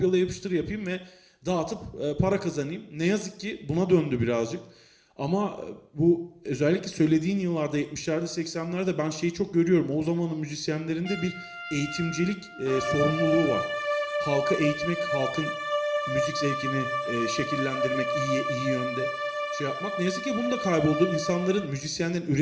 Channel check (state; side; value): identical; both; correlation 1.00